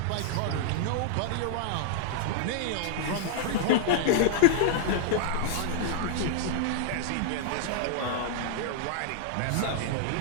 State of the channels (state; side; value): different; both; correlation -0.01